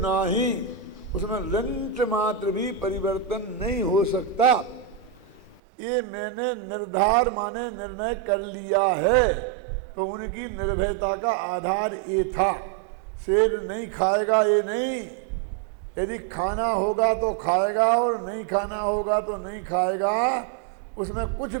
उसमें रंच मात्र भी परिवर्तन नहीं हो सकता। ये मैंने निर्धार माने निर्णय कर लिया है। तो उनकी निर्भयता का आधार ये था। शेर नहीं खाएगा ये नहीं, यदि खाना होगा तो खाएगा और नहीं खाना होगा तो नहीं खाएगा, उसमें कुछ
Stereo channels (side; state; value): left; drops out; at 5.6 s